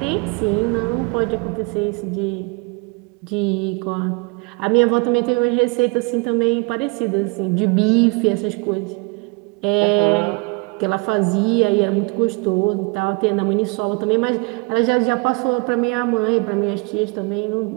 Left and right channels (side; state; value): left; quieter; 29.0 dB